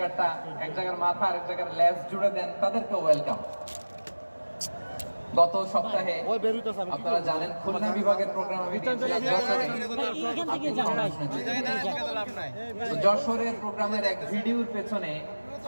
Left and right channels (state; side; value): inverted; both; correlation -1.00